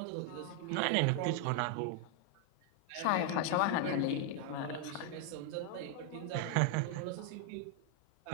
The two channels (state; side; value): different; both; correlation 0.00